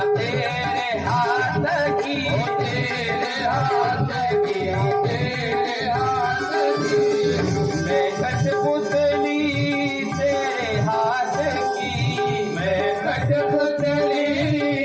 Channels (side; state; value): both; identical; correlation 1.00